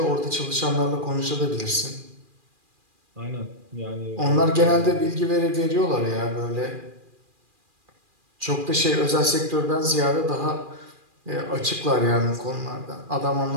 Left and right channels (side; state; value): left; late; 2.4 ms